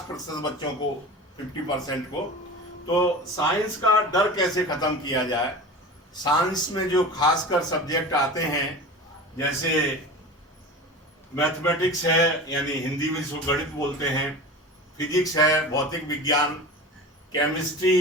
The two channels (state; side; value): normal; both; correlation 0.33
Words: बच्चों को, 50% को। तो साइंस का डर कैसे ख़त्म किया जाए। साइंस में जो खासकर सब्जेक्ट आते हैं जैसे मैथमेटिक्स है, यानी हिंदी में जिसको गणित बोलते हैं, फिजिक्स है, भौतिक विज्ञान,